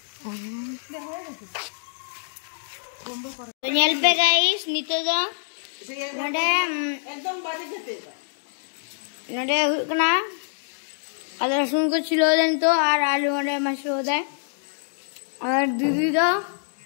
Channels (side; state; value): right; silent; digital silence